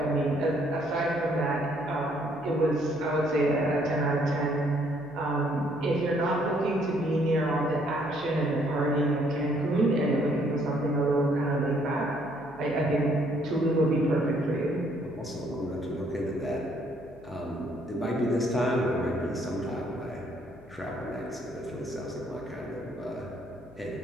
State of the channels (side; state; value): left; noise; hum, 25 dB below the sound